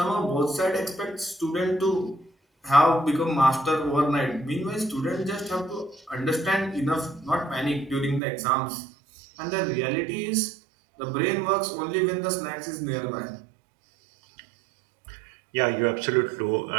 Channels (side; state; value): left; drops out; at 8.2 s